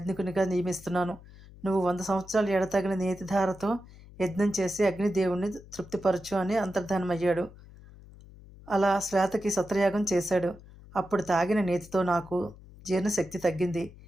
నియమిస్తున్నాను. నువ్వు 100 సంవత్సరాలు ఎడతగిన నేతిధారతో యజ్ఞం చేసి అగ్నిదేవుణ్ణి తృప్తిపరచు అని అంతర్ధానమయ్యాడు. అలా శ్వేతకి సత్రయాగం చేశాడు. అప్పుడు తాగిన నేతితో నాకు జీర్ణశక్తి తగ్గింది,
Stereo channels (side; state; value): left; noise; hum, 20 dB below the sound